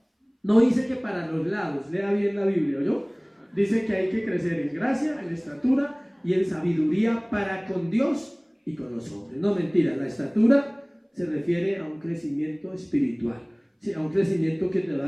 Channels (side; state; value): both; identical; correlation 1.00